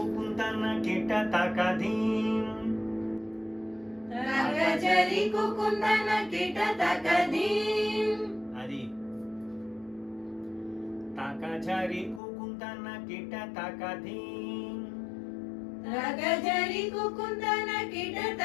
కిట తాకదీం తాకజరి కుకుందన కిట తాకదీం అది తాకజరి కుకుందన కిట తాకదీం తాకజరి కుకుందన కిట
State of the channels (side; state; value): right; drops out; at 12.2 s